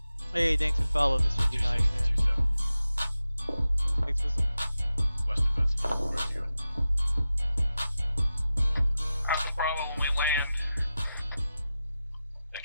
Hey, thanks for following, Mr. D9, man. 2-7. Thanks for some. Western birds, ready to go. Alpha Bravo, when we land,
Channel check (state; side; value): inverted; both; correlation -0.92